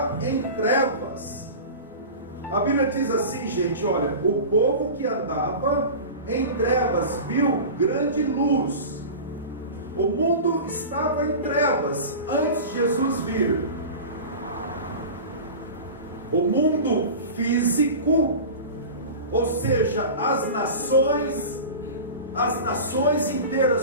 em trevas. A Bíblia diz assim, gente, olha, o povo que andava em trevas viu grande luz. O mundo estava em trevas antes de Jesus vir. O mundo físico, ou seja, as nações, as nações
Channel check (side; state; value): both; inverted; correlation -0.32